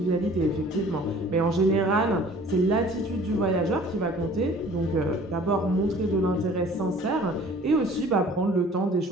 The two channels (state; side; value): normal; both; correlation 0.50